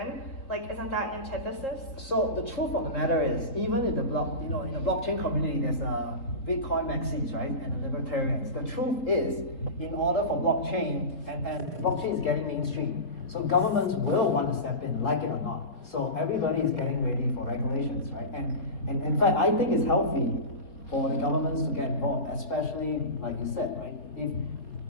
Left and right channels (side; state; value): right; late; 4.0 ms